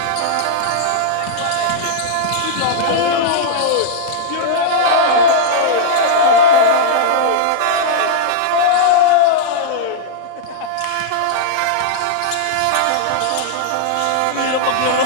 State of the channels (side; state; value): both; different; correlation -0.02